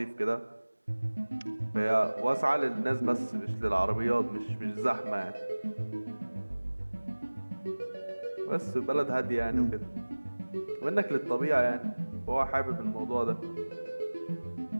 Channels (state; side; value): inverted; both; correlation -1.00